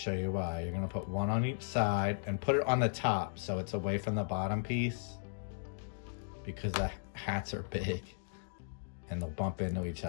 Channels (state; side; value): silent; right; digital silence